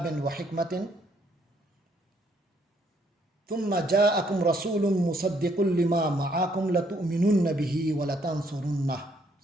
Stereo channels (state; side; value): normal; both; correlation 0.69